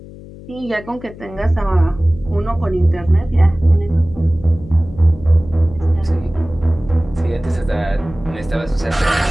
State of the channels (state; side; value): noise; left; hum, 17 dB below the sound